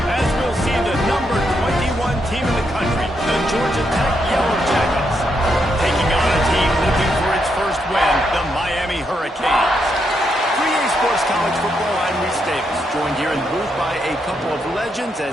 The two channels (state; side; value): normal; both; correlation 0.79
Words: As we'll see the number 21 team in the country, the Georgia Tech Yellow Jackets, taking on a team looking for its first win, the Miami Hurricanes. 3A Sports College Football, I'm Reese Davis, joined here in the booth by a couple of legends,